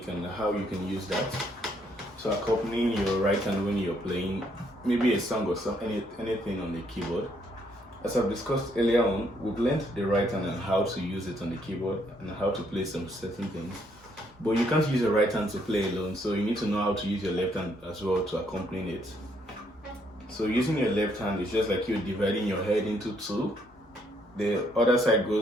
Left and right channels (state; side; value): normal; both; correlation 0.71